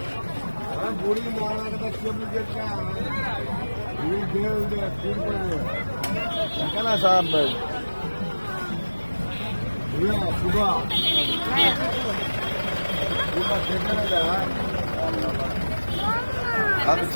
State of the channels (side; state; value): both; inverted; correlation -1.00